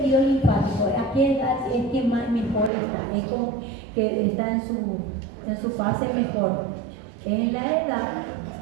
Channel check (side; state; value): left; drops out; at 2.7 s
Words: linfático? ¿A qué edad es que más mejor está? Es como que está en su fase mejor. Es en la edad,